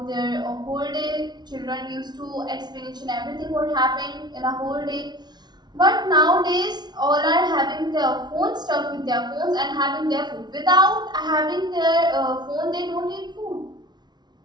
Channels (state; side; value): late; left; 0.20 ms